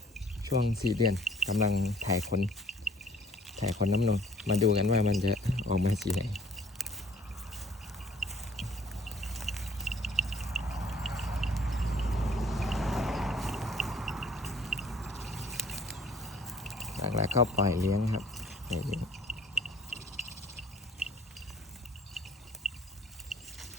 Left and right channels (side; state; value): both; normal; correlation 0.57